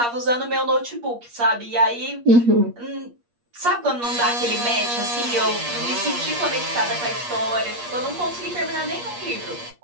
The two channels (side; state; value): left; late; 8.5 ms